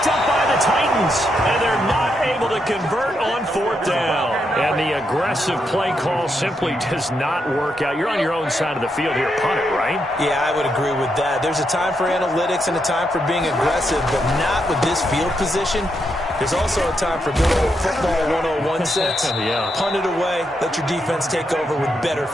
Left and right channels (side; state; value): both; normal; correlation 0.81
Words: up by the Titans, and they're not able to convert on 4th down. And the aggressive play call simply does not work out. You're on your own side of the field here. Punt it, right? Yeah, I would agree with that. There's a time for analytics and a time for being aggressive, but not with this field position. There's also a time for good old football 101 sense. Yeah. Punt it away. Let your defense take over with better